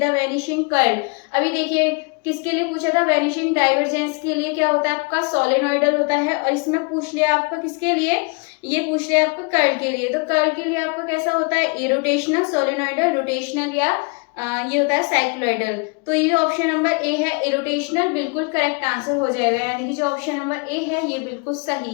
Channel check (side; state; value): right; quieter; 33.0 dB